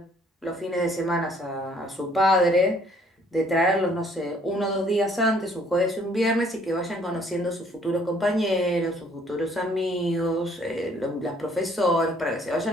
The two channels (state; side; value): normal; both; correlation 0.61